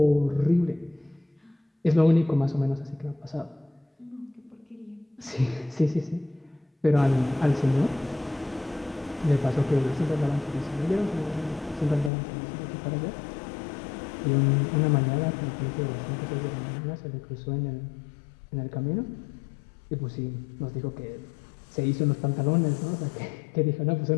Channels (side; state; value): right; drops out; at 12.1 s